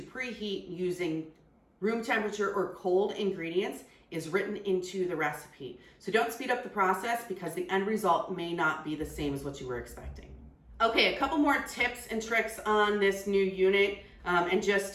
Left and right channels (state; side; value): identical; both; correlation 1.00